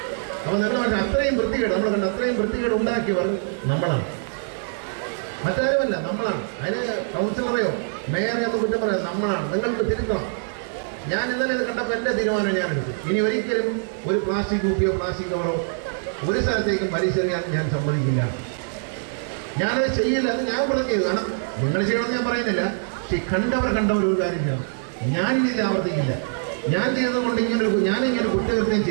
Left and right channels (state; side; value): silent; left; 60 dB below the other